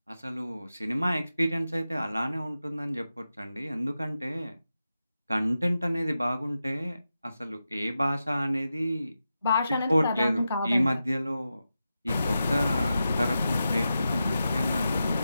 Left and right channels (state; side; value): inverted; both; correlation -0.90